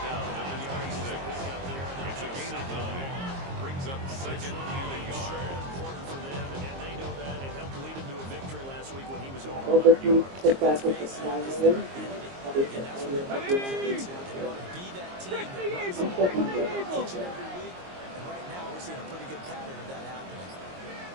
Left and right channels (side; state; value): left; late; 22 ms